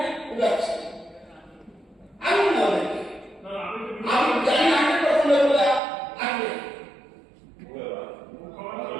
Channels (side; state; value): left; drops out; at 5.8 s